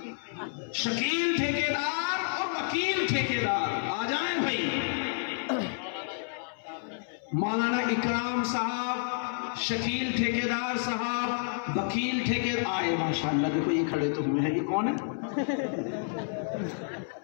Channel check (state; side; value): silent; right; 58 dB below the other